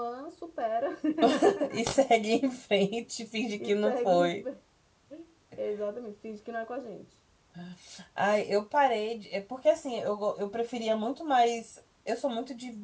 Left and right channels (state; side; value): identical; both; correlation 1.00